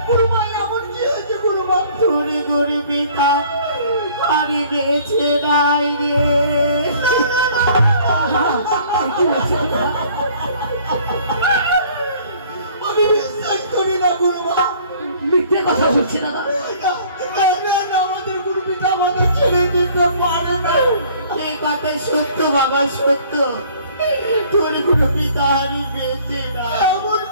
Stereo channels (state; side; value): inverted; both; correlation -0.55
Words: গুরু মা এমন কি হয়েছে গুরু মা? তোরে গরে পিতা আরে বেঁচে নাই রে। কি হচ্ছে দাদা? আমি বিশ্বাস করি না গুরু মা। মিথ্যে কথা বলছে দাদা। আমাদের গুরু পিতা আমাদের ছেড়ে দিতে পারে না। এই কথা সত্য বাবা, সত্য। তোর গুরু পিতা আরে বেঁচে নাই। এমন